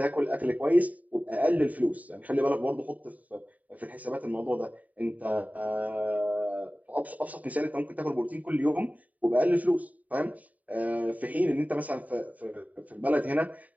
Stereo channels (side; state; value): left; late; 0.073 ms